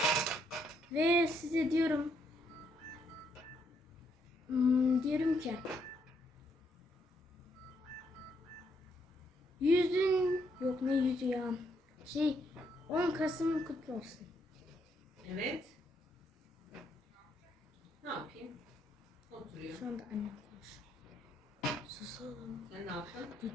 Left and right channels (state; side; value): normal; both; correlation 0.74